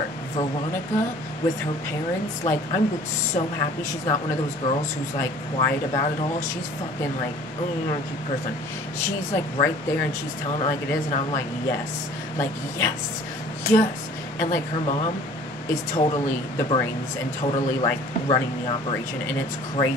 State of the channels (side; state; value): both; normal; correlation 0.50